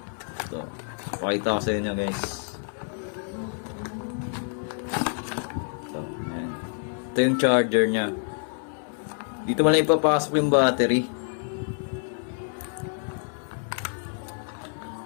Ito. Pakita ko sa inyo guys. Ito, yan. Ito yung charger niya. Dito mo lang ipapasok yung battery.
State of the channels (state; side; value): silent; right; 56 dB below the other